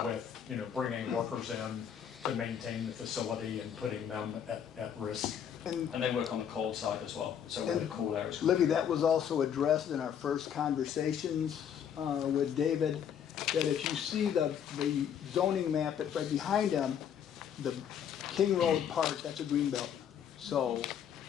with, bringing workers in to maintain the facility and putting them at risk. And they work on the cold side as well, so where the cool air is. Libby, that was also addressed in our first conversations with David, that if you see the zoning map right behind them, the King Road part, that's a green belt. So,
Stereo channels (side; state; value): right; quieter; 8.7 dB